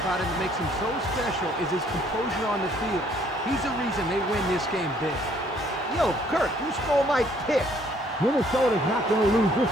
him that makes him so special is his composure on the field. He's the reason they win this game big. Yo, Kirk, you stole my pick. Minnesota's not going to lose this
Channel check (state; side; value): normal; both; correlation 0.63